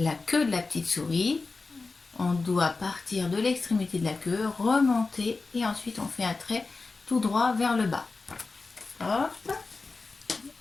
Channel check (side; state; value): right; quieter; 3.9 dB